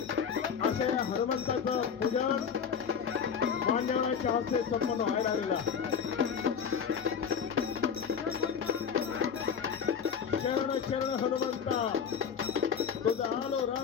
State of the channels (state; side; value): quieter; right; 7.1 dB